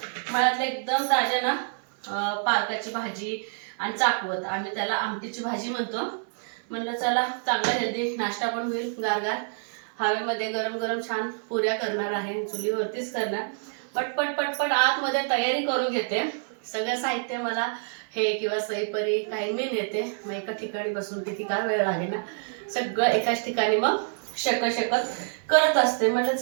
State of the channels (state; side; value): silent; left; 56 dB below the other